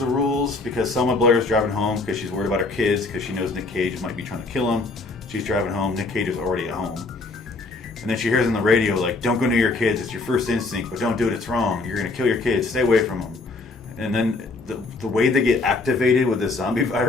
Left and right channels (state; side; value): quieter; right; 3.5 dB